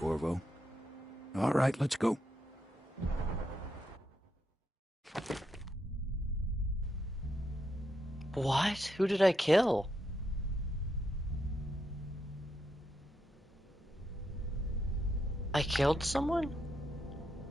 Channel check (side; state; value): both; normal; correlation 0.81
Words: All right, let's go. What? Who did I kill? I killed someone?